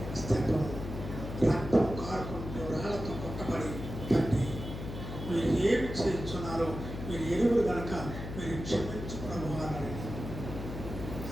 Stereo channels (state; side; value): noise; left; hum, 8 dB below the sound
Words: స్తెఫను రక్తం కారుకుంటూ రాళ్లతో కొట్టబడి తండ్రి మీరు ఏమి చేస్తున్నారో మీరు ఎరువులు కనుక మీరు క్షమించుకోవాలని